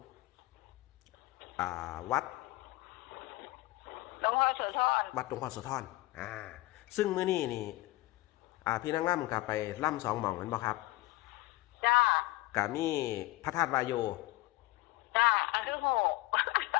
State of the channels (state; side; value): quieter; right; 19.3 dB